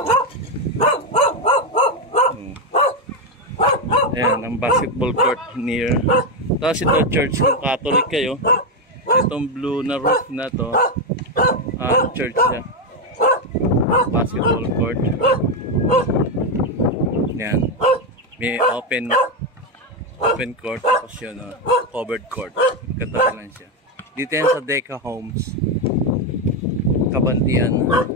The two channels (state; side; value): normal; both; correlation 0.07